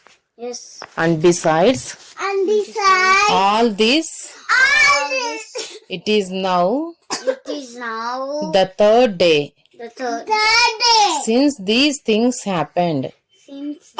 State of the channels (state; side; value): identical; both; correlation 1.00